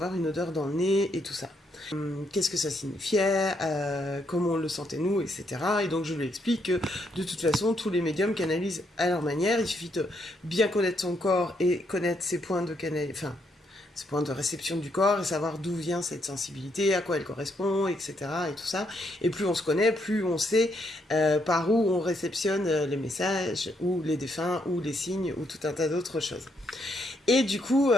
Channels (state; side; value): normal; both; correlation 0.75